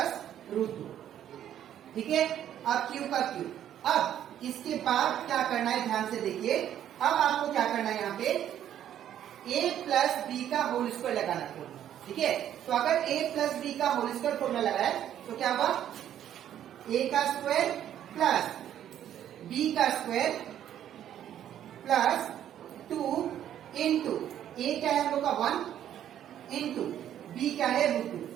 रूट 2, ठीक है। अब क्यूब का क्यूब। अब इसके बाद क्या करना है, ध्यान से देखिए। अब आपको क्या करना है, यहाँ पे a प्लस बी का होल स्क्वायर लगाना है, ठीक है। तो अगर a प्लस बी का होल स्क्वायर फॉर्मूला लगाए तो क्या हुआ, a का स्क्वायर प्लस b का स्क्वायर प्लस 2 इंटू a क्या है हम लोग का 1 इंटू b क्या है रूट 2,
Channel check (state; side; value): quieter; left; 10.7 dB